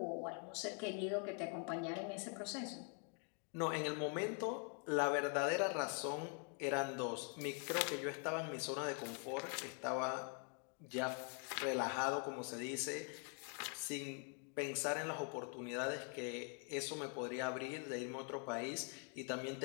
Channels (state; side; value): quieter; right; 38.9 dB